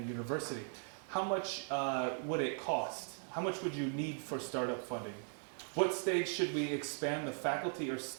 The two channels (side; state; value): left; silent; 52 dB below the other